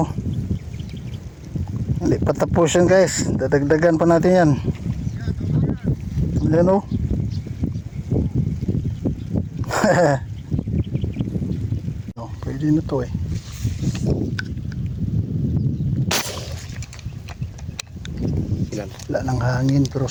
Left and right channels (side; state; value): both; identical; correlation 1.00